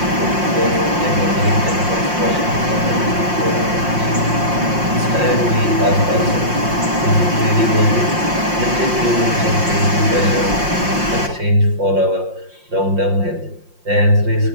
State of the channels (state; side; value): late; left; 5.6 ms